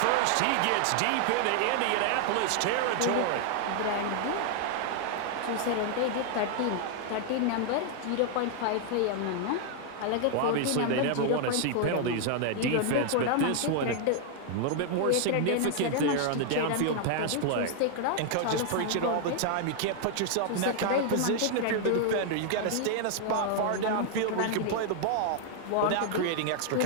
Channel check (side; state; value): both; different; correlation 0.00